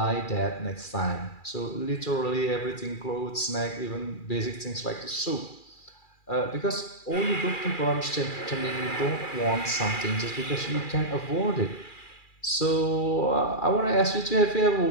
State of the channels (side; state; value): right; late; 2.4 ms